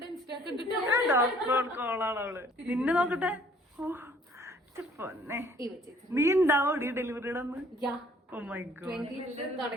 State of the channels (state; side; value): normal; both; correlation 0.58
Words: ഡോക്ടർ ഓൺ കോളാണ് അവള്. നിന്നെ നോക്കട്ടെ. പൊന്നെ, നീ ഉണ്ടാവോടി ഡെലിവറിയുടെ അന്ന്?